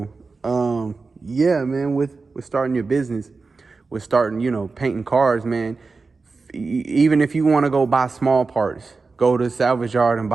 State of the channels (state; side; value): quieter; left; 4.2 dB